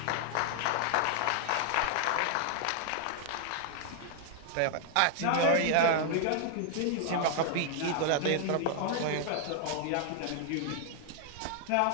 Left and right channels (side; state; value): both; different; correlation 0.00